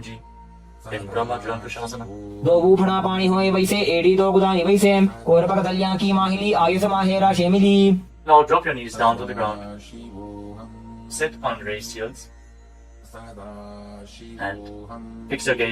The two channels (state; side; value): identical; both; correlation 1.00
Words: in Brahma Jlankushasana. दो बूफना पानी होए वैसे एड़ी दो गुदानी वैसे कोरपक दलियां की माहिली आयुष माहेरा शेमिली. Now drop your knees down to the ground. Sit on raised heels and fix your